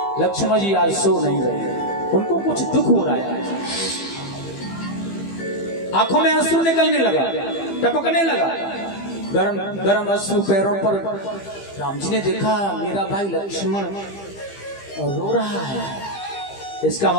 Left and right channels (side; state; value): right; late; 15 ms